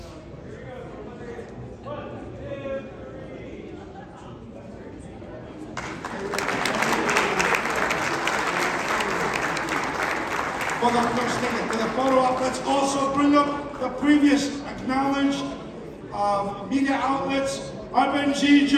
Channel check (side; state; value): both; identical; correlation 1.00